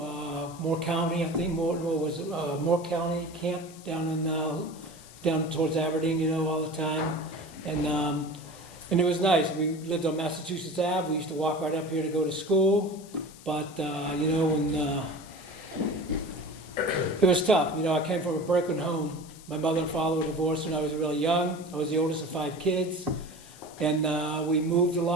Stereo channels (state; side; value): noise; left; hiss, 20 dB below the sound